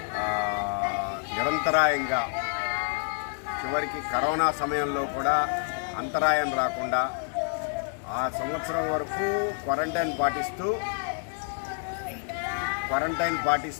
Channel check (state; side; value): silent; right; 56 dB below the other